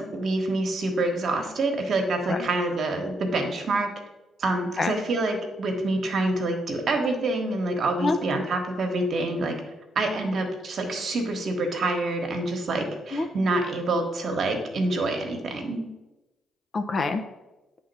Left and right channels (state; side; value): normal; both; correlation 0.76